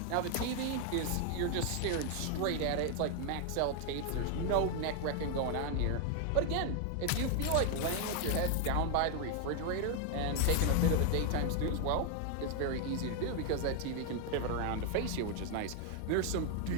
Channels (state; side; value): different; both; correlation 0.00